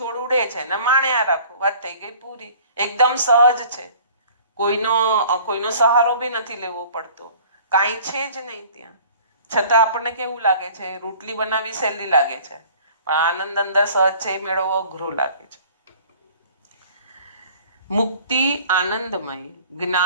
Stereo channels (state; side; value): inverted; both; correlation -0.49